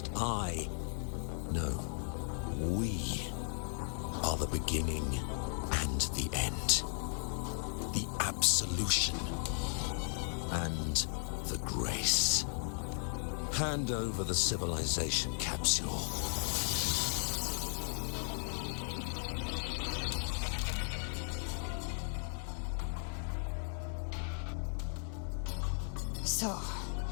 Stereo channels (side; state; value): right; silent; 54 dB below the other